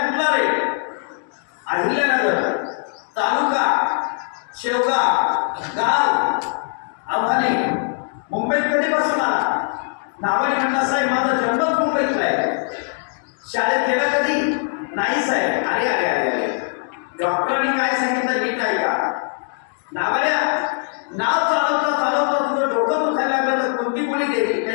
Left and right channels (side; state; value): right; silent; 57 dB below the other